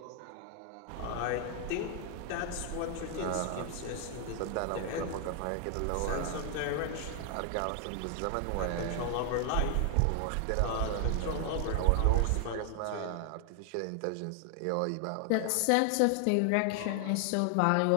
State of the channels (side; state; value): both; different; correlation 0.00